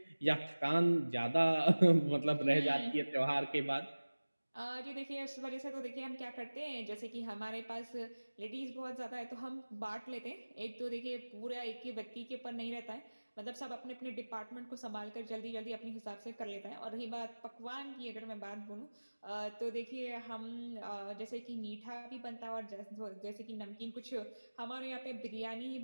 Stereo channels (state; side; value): inverted; both; correlation -1.00